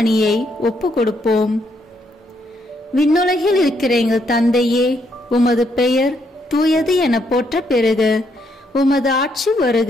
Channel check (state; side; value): normal; both; correlation 0.74